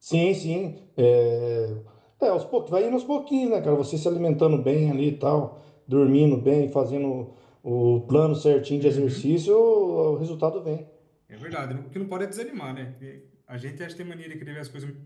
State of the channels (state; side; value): identical; both; correlation 1.00